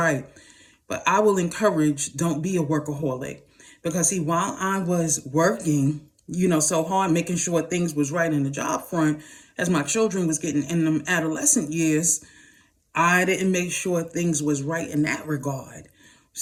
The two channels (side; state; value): both; identical; correlation 1.00